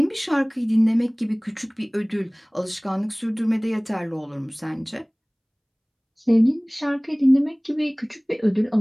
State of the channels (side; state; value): both; identical; correlation 1.00